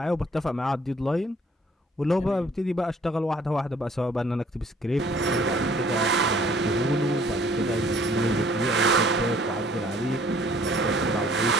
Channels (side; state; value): both; normal; correlation 0.58